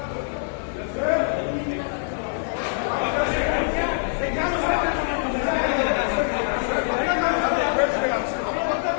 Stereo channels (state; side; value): silent; right; digital silence